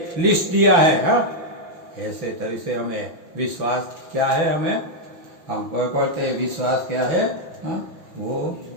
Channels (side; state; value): left; late; 6.0 ms